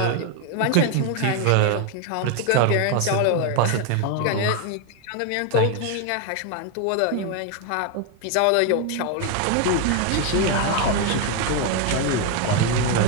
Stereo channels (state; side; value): different; both; correlation 0.01